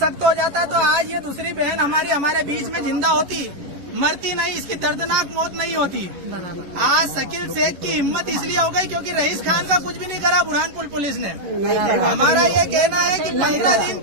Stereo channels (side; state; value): left; late; 11 ms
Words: हो जाता तो आज ये दूसरी बहन हमारे बीच में जिंदा होती, मरती नहीं, इसकी दर्दनाक मौत नहीं होती। आज शकील शेख की हिम्मत इसलिए हो गई क्योंकि रईस खान का कुछ भी नहीं करा बुरहानपुर पुलिस ने। हमारा ये कहना है कि 15 दिन